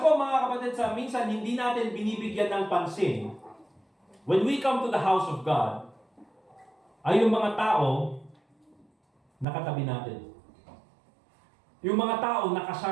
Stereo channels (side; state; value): left; drops out; at 9.5 s